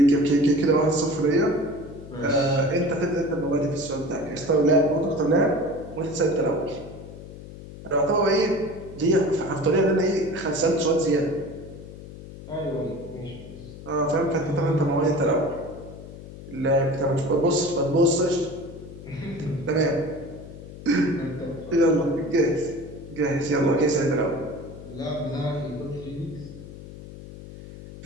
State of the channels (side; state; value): left; noise; hum, 14 dB below the sound